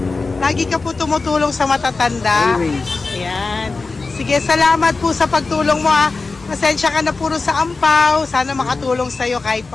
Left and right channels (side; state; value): right; quieter; 3.9 dB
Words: Lagi ka po tumutulong sa matatanda. Always. Ayan. Sige, salamat po sa pagtulong mo, ha. Pasensya ka na puro sa ampaw. Sana makatulong sa'yo kahit